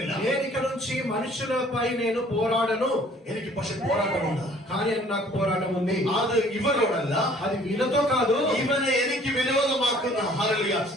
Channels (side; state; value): both; normal; correlation 0.55